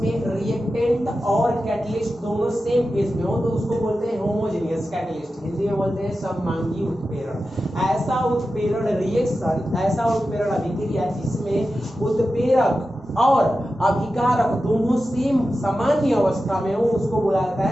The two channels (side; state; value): both; normal; correlation 0.92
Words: रिएक्टेंट और कैटलिस्ट दोनों सेम फेज में हो तो उसको बोलते हैं होमोजेनियस कैटलिस्ट। हिंदी में बोलते हैं सममांगी उत्प्रेरण। ऐसा उत्प्रेरण रिएक्शन, ऐसा उत्प्रेरण अभिक्रिया जिसमें उत्प्रेरक और अभिकारक दोनों सेम सामान्य अवस्था में हो उसको बोला जाता